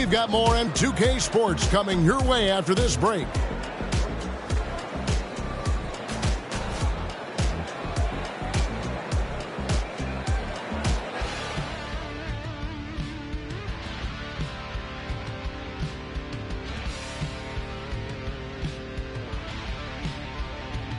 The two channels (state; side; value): identical; both; correlation 1.00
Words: got more on 2K Sports coming your way after this break.